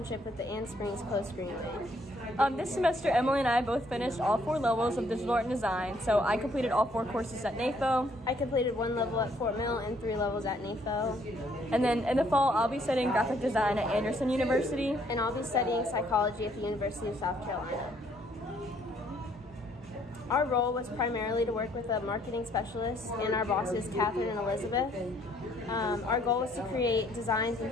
with the Ann Springs Close Greenway. This semester, Emily and I both finished all 4 levels of digital art and design. So I completed all 4 courses at NAFO. I completed 1 level at Fort Mill and 3 levels at NAFO. And then in the fall, I'll be studying graphic design at Anderson University. And I'll be studying psychology at the University of South Carolina. Our role was primarily to work with a marketing specialist and our bosses, Catherine and Elizabeth. Our goal was to create designs and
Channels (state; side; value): normal; both; correlation 0.66